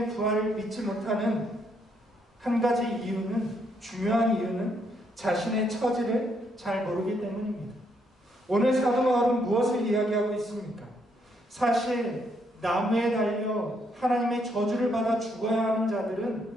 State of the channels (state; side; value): normal; both; correlation 0.74